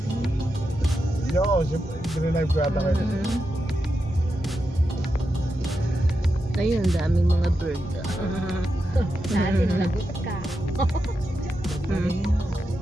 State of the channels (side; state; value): both; normal; correlation 0.87